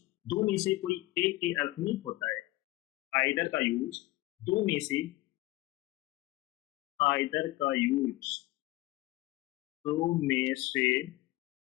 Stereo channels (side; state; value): right; quieter; 18.9 dB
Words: दो में से कोई एक के अर्थ में होता है। आइदर का यूज दो में से, आइदर का यूज दो में से